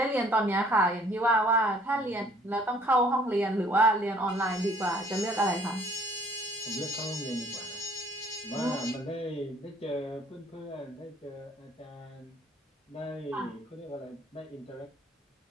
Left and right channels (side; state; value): both; normal; correlation 0.59